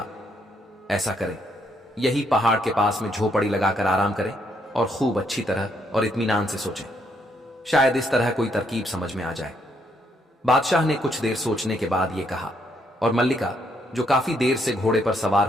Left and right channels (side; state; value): both; normal; correlation 0.73